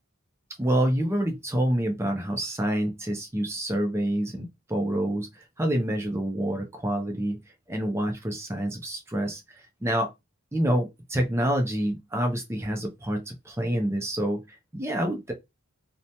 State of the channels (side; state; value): both; normal; correlation 0.81